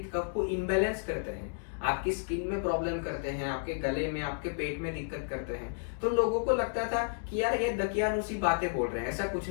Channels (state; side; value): silent; right; digital silence